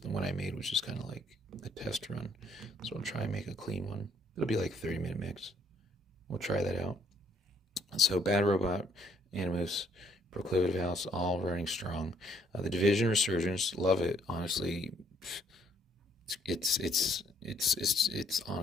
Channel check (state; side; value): normal; both; correlation 0.66